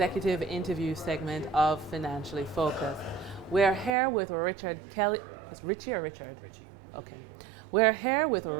interview segment of Financially Focused. We're here with Richard Kelly. Is Richie or Richard? Richie. Okay. We're here with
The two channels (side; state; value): left; drops out; at 3.9 s